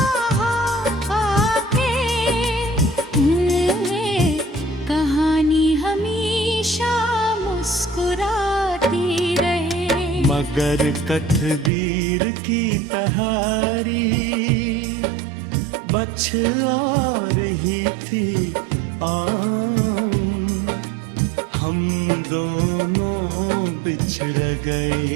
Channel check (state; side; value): drops out; left; at 11.7 s